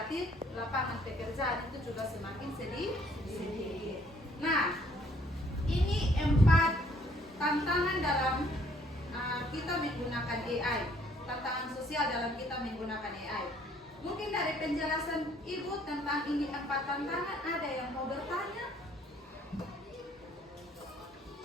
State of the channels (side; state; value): both; normal; correlation 0.63